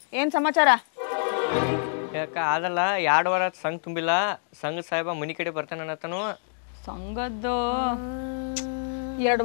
ಏನು ಸಮಾಚಾರ? ಯಾಕ ಅದಲ್ಲ 2 ವಾರ ಸಂಘ ತುಂಬಿಲ್ಲ, ಸಂಘ ಸಾಹೇಬ ಮನಿ ಕಡೆ ಬರ್ತಾನೆ ಅನ್ನತನು. ಸಂಘದ್ದು 2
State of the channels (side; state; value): right; silent; digital silence